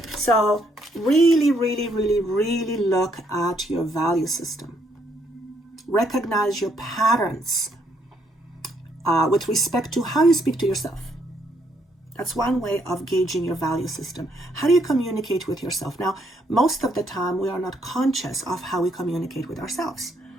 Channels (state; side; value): normal; both; correlation 0.72